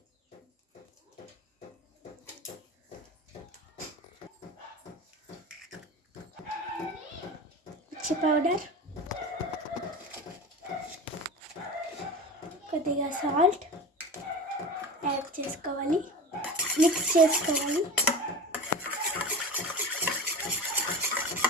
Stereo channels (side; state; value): both; normal; correlation 0.31